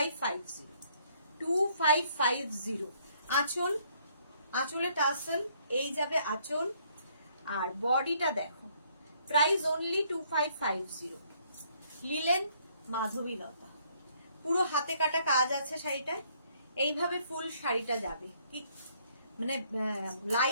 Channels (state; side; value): inverted; both; correlation -0.66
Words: 2550। আঁচল, আঁচলে টাসেল, এই যাবে আঁচল। আর বডিটা দেখো, প্রাইস অনলি 2550, লিলেন মাধবীলতা, পুরো হাতে কাটা কাজ আছে শাড়িটায়। এইভাবে ফুল শাড়িটা যাবে, কি মানে